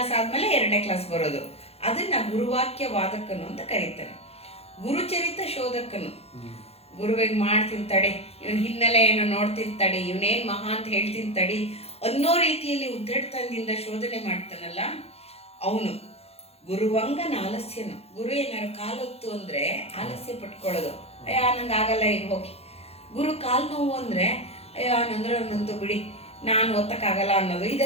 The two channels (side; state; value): right; late; 0.29 ms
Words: ಆದ್ಮೇಲೆ 2ನೇ ಕ್ಲಾಸ್ ಬರೋದು. ಅದನ್ನ ಗುರುವಾಕ್ಯ ವಾದಕನು ಅಂತ ಕರೀತಾರೆ. ಗುರುಚರಿತ ಶೋಧಕನು. ಗುರುವಿಗೆ ಮಾಡ್ತೀನಿ ತಡೆ, ಇವನ್ ಹಿನ್ನೆಲೆ ಏನೋ ನೋಡ್ತೀನಿ ತಡಿ, ಇವನೇನ್ ಮಹಾ ಅಂತ ಹೇಳ್ತೀನಿ ತಡಿ ಅನ್ನೋ ರೀತಿಯಲ್ಲಿ ಉದ್ದಟತನದಿಂದ ಶೋಧನೆ ಮಾಡ್ತಾನಲ್ಲ ಅವನು. ಗುರುವಂಗನ ಆಲಸ್ಯನು. ಗುರು ಏನಾರು ಕಾಲೊತ್ತು ಅಂದ್ರೆ ಆಲಸ್ಯ ಪಟ್ಕೊಳ್ಳೋದು, ಅಯ್ಯ ನಂಗೆ ಆಗಲ್ಲ ಈಗ ಹೋಗಿ. ಗುರು ಕಾಲು ನೋವು ಅಂದ್ರೆ ಅಯ್ಯೋ ನಂದ್ರೆ ನಂದು ಬಿಡಿ ನಾನು ಒತ್ತಕ್ಕಾಗಲ್ಲ ಅನ್ನೋದು,